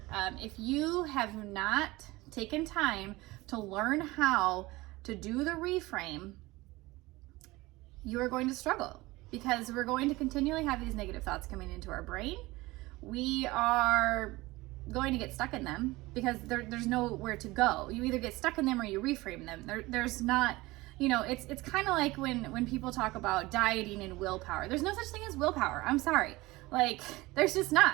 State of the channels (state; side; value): quieter; left; 20.6 dB